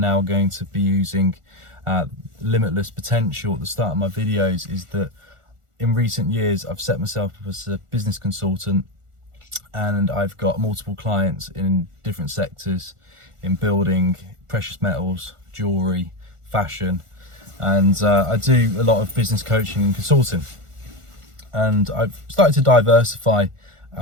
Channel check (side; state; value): left; late; 1.4 ms